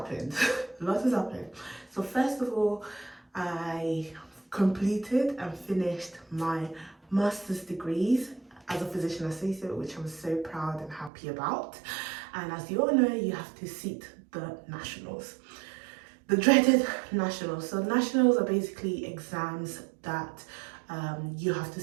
A lot has happened. So first of all, I completed and finished my master's degrees as a physician associate, which I'm so proud and happy about. And as you all know, you have to sit the nationals. The dreaded nationals. So nationals are basically exams that you have to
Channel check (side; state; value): left; drops out; at 11.1 s